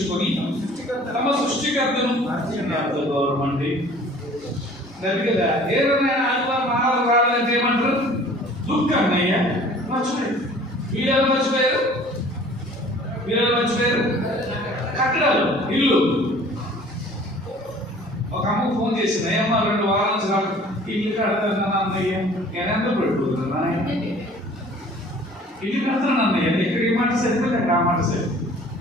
తమ సృష్టికర్తను గౌరవం కదా. ఏదైనా ఆదివారం ఆహారం రావాలంటే ఏమంటారు? దుఃఖం అన్నయ్య మర్చిపోయారు. వీళ్ళు మర్చిపోయారు, వీళ్ళు మర్చిపోయారు. కట్టడాలు, ఇల్లు. ఒక అమ్మకు ఫోన్ చేసింది, అమ్మ 2 వారాల నుంచి రాదు, ఇల్లు కడతాను అన్నయ్య. నేను ఎంత పెట్టుకుంటున్నా? ఇల్లు కడతాను అన్నయ్య. ఇక్కడ ఈ మాట సరిపోతే అక్కడ ఆ మాట సరిపోతుంది.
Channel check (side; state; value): both; normal; correlation 0.50